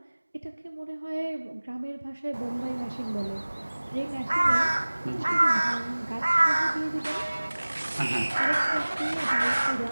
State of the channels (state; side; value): inverted; both; correlation -1.00